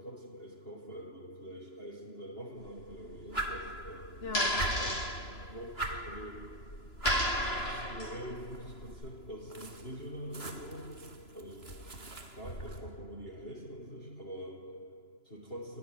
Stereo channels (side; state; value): right; late; 2.9 ms